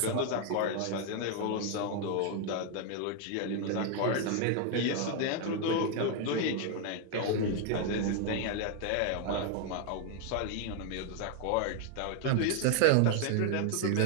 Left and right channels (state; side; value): different; both; correlation 0.01